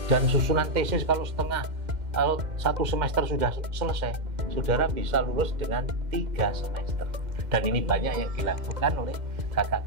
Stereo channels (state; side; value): late; left; 2.1 ms